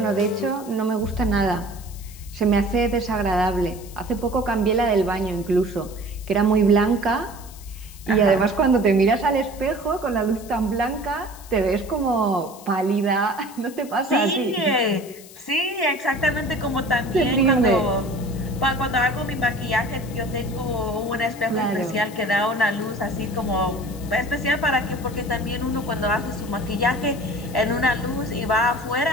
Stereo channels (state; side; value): noise; left; hiss, 19 dB below the sound